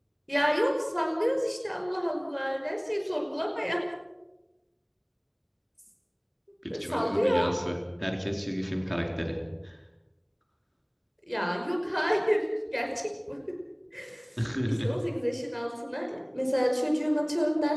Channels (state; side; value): identical; both; correlation 1.00